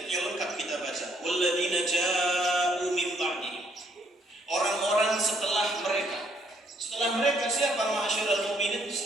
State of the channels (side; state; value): both; normal; correlation 0.69